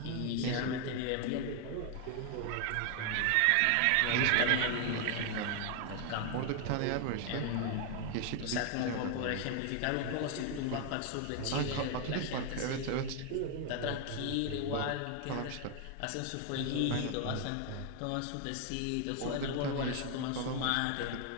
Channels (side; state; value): both; different; correlation 0.00